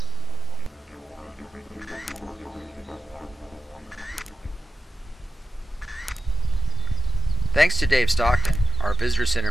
Thanks to Dave Stockton, our visitor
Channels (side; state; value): both; normal; correlation 0.92